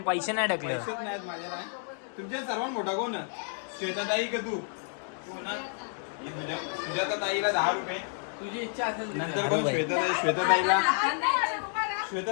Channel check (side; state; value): right; silent; 58 dB below the other